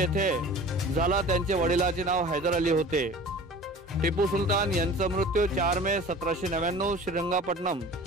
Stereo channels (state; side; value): normal; both; correlation 0.42